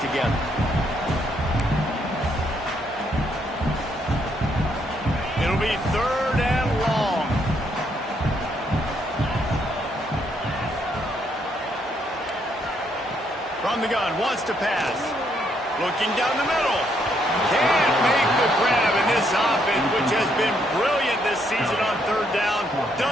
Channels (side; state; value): both; normal; correlation 0.73